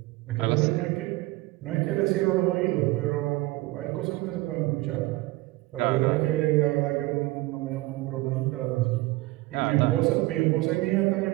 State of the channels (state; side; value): quieter; left; 19.8 dB